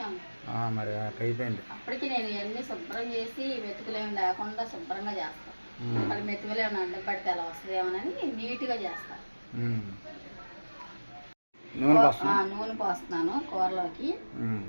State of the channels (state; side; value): inverted; both; correlation -1.00